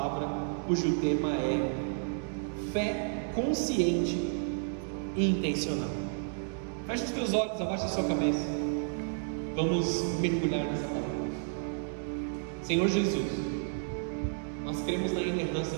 cujo tema é fé consciente e intencional. Feche os teus olhos, abaixa a sua cabeça. Vamos mergulhar nessa palavra. Senhor Jesus, nós cremos na inerrância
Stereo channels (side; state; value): left; silent; digital silence